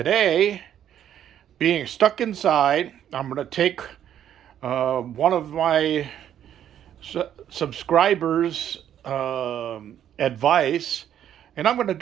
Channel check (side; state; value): left; quieter; 10.3 dB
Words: being stuck inside, I'm going to take one of my subscribers' advice, and I'm going to